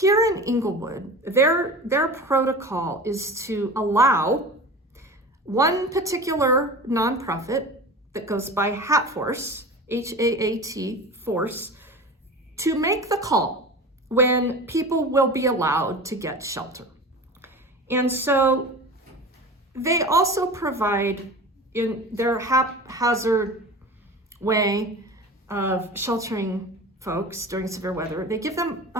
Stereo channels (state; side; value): normal; both; correlation 0.34